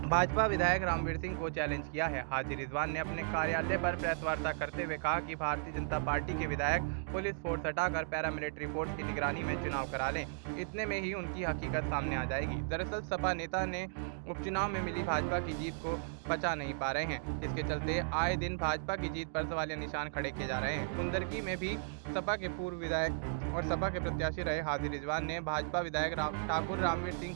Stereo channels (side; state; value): left; silent; digital silence